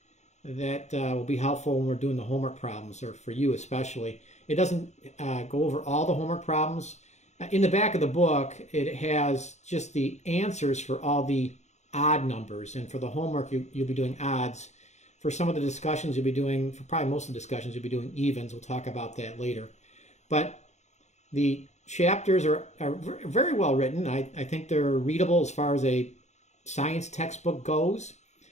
that will be helpful when we're doing the homework problems, or for you especially. It doesn't go over all the homework problems. In the back of the book, it has just the answers for all the odd numbers, and for the homework you'll be doing odds. For some of the discussions you'll be doing, for probably most of the discussions you'll be doing evens. We'll talk about that later. But the chapters are very well written. I think they're readable as far as a science textbook goes.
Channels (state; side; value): late; right; 0.33 ms